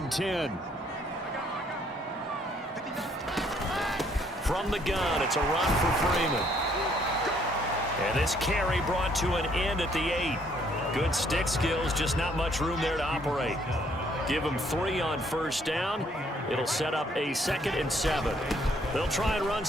10. From the gun, it's a run for Freeman. And this carry brought to an end at the 8. Good stick skills, just not much room there to operate. Give him 3 on 1st down. It'll set up a 2nd and 7. They'll try and run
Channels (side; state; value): both; normal; correlation 0.66